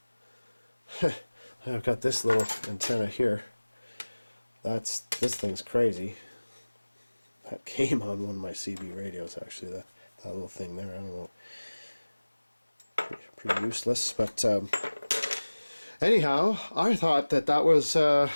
I've got this little antenna here. This thing's crazy. That came on one of my CB radios, actually. That little thing there. I don't know. Pretty useless, but anyhow, I thought that was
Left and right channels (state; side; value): inverted; both; correlation -1.00